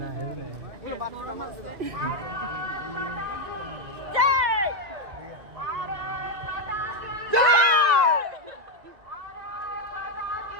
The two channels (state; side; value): late; left; 1.9 ms